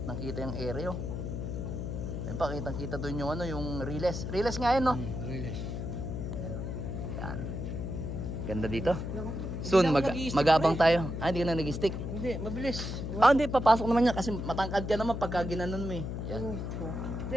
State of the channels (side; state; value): left; noise; hum, 4 dB below the sound